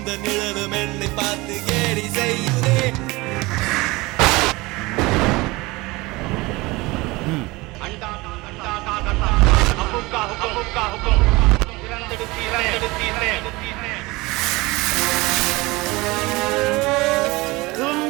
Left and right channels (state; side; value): quieter; left; 22.3 dB